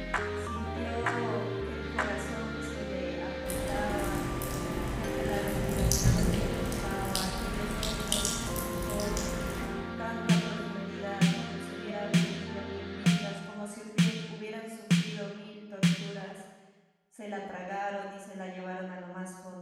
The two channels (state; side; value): identical; both; correlation 1.00